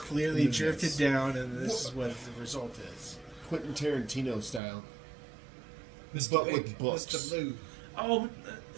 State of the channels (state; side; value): drops out; left; at 4.6 s